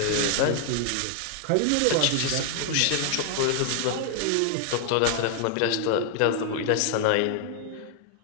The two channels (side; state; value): both; different; correlation 0.00